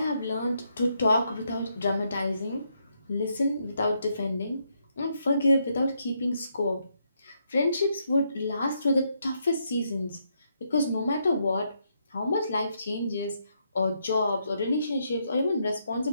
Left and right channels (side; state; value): both; inverted; correlation -0.77